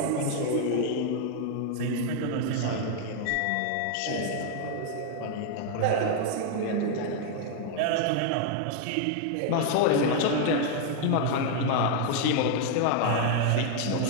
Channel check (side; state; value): both; different; correlation 0.00